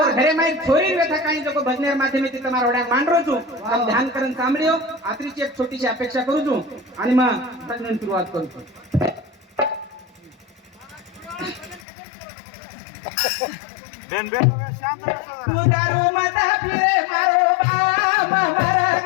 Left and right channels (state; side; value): drops out; right; at 11.8 s